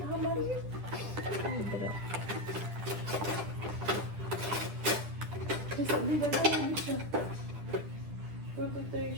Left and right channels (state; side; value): late; left; 10 ms